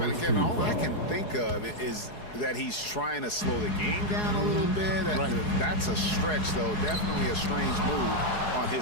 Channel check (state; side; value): late; right; 4.8 ms